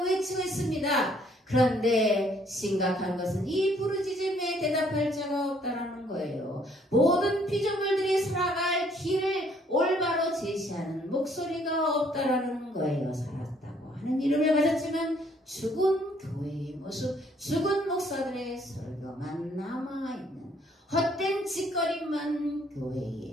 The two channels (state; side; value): normal; both; correlation 0.64